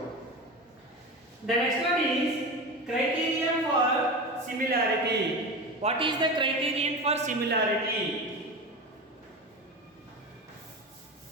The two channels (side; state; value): both; normal; correlation 0.26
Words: The next one is criterion for similarity. What is the criterion for similarity?